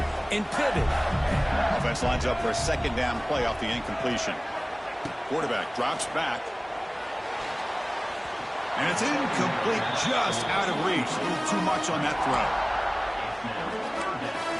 and pivot. Offense lines up for a second down play off the incompletion. Quarterback drops back. And it's incomplete, just out of reach. A little too much on that throw.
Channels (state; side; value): identical; both; correlation 1.00